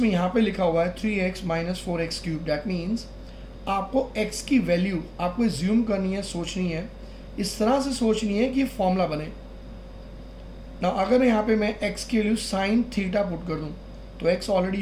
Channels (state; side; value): identical; both; correlation 1.00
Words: में यहाँ पे लिखा हुआ है 3x minus 4x cube. That means आपको x की वैल्यू आपको एज्यूम करनी है, सोचनी है, इस तरह से सोचनी है कि फॉर्मूला बने ना. अगर यहाँ पे मैं x की वैल्यू साइन थीटा पुट कर दूँ तो x ऑलरेडी